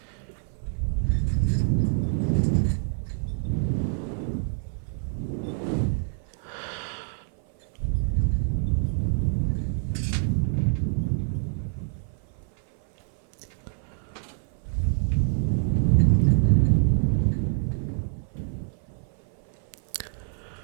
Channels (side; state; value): left; silent; 56 dB below the other